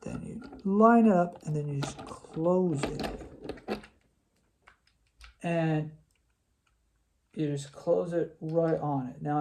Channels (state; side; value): identical; both; correlation 1.00